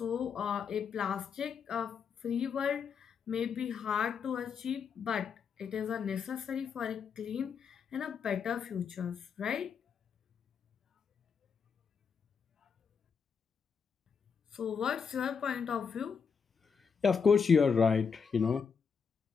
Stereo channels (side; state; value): right; quieter; 6.2 dB